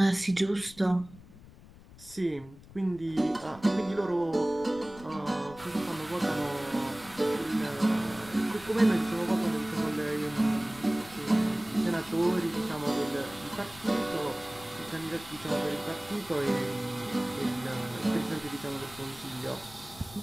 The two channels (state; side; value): noise; left; rumble, 20 dB below the sound